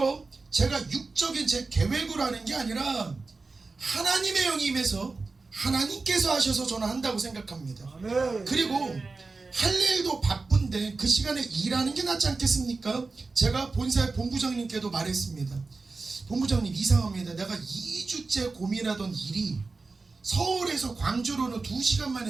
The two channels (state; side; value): quieter; left; 3.9 dB